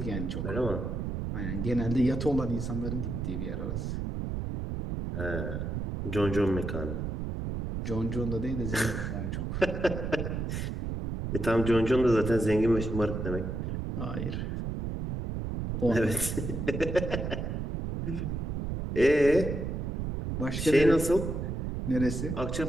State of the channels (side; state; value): right; noise; rumble, 3 dB below the sound